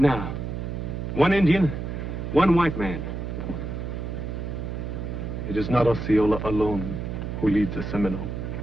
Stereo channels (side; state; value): right; noise; hum, 5 dB below the sound